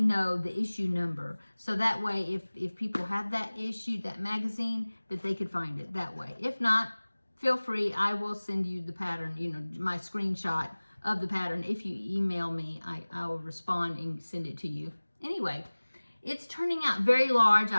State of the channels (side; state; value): both; inverted; correlation -1.00